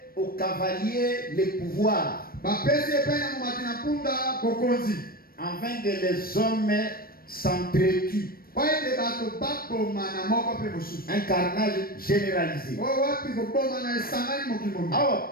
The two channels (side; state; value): right; late; 0.43 ms